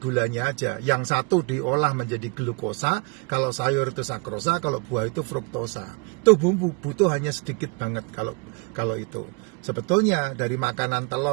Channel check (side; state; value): left; quieter; 30.6 dB